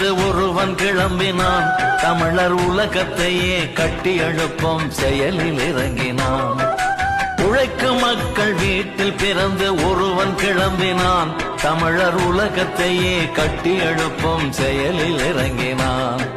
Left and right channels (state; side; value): identical; both; correlation 1.00